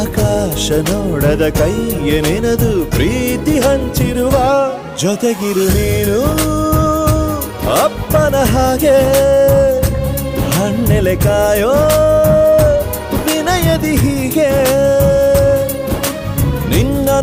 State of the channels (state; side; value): identical; both; correlation 1.00